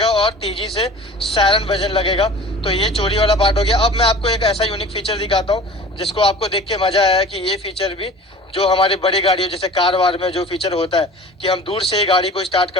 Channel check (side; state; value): both; normal; correlation 0.42